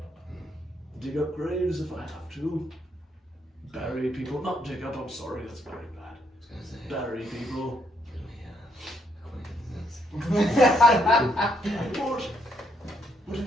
dig up graves if I have to, bury people. Not dig up. I'm sorry, that's very bad. I was gonna say, Bury people. can we, acquaintances? What do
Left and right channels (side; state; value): both; normal; correlation 0.73